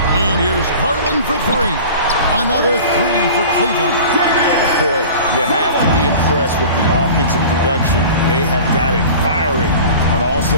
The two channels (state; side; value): inverted; both; correlation -0.40